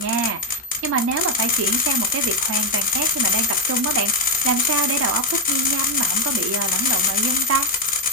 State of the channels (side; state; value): both; normal; correlation 0.06